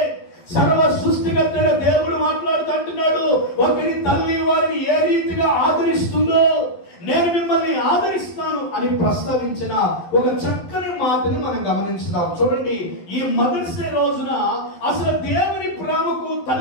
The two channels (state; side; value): late; right; 11 ms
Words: సర్వ సృష్టికర్తైన దేవుడు మాట్లాడుతుంటున్నాడు. ఒకరి తల్లి వారిని ఏ రీతిగా ఆదరిస్తుందో నేను మిమ్మల్ని ఆదరిస్తాను అని ప్రస్తావించిన ఒక చక్కని మాటని మనం గమనించుదాం. చూడండి, ఈ మదర్స్ డే రోజున అసలు దేవుని ప్రేమకు